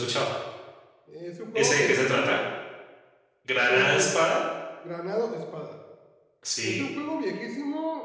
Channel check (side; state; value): both; identical; correlation 1.00